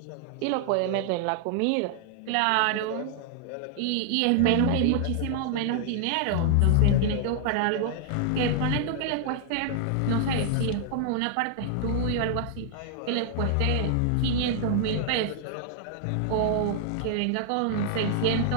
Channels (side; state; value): both; different; correlation 0.00